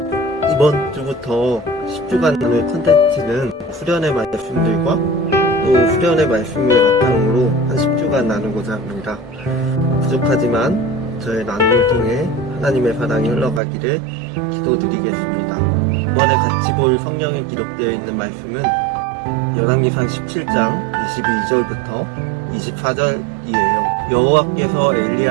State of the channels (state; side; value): drops out; left; at 13.6 s